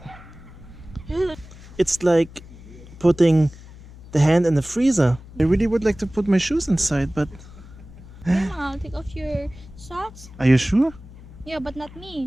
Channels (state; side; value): noise; left; hum, 18 dB below the sound